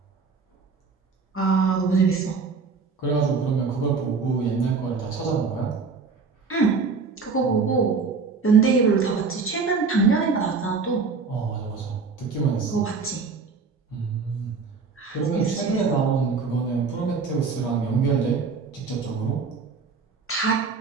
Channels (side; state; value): left; quieter; 4.9 dB